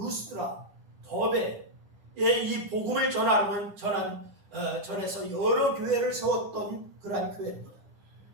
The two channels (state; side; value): late; left; 10 ms